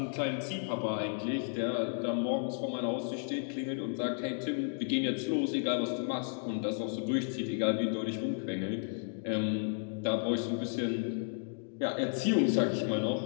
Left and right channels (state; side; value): silent; right; digital silence